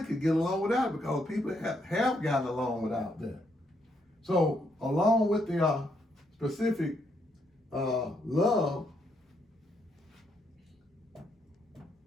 could get along without, because people have gotten along without that. So along with the specific love,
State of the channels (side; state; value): both; normal; correlation 0.76